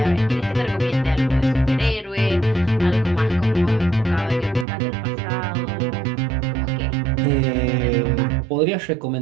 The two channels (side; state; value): left; drops out; at 4.7 s